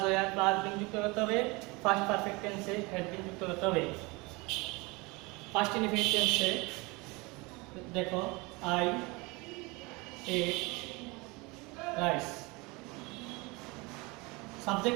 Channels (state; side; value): quieter; left; 25.7 dB